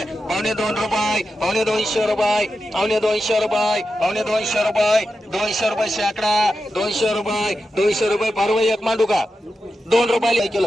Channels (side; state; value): both; normal; correlation 0.90